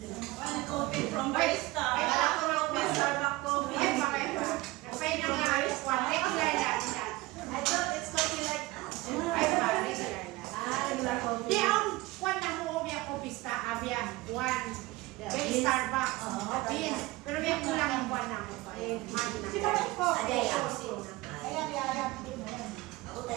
Coffee from Barista. Ay, Kala ko lang may Starbucks coffee. Ay, bakit ba? Napay na nga alas 1. Regular lang siya. I thought it's coffee like Ay, ba? Regular lang. regular coffee. Di ang kwan na mo biya ko pista abya one very Starbucks beans pero biya kulang ang kwan na mo pa si ba ko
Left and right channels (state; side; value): quieter; left; 20.2 dB